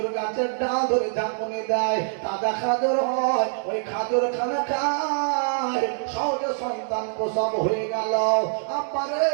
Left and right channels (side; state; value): left; silent; 62 dB below the other